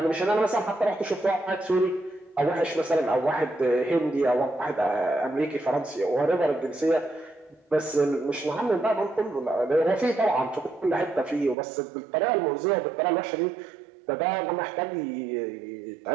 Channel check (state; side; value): drops out; left; at 11.6 s